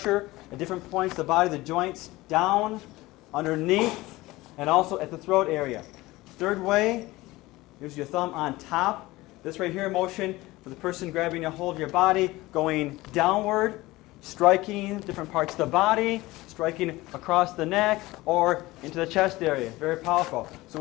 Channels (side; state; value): right; quieter; 19.5 dB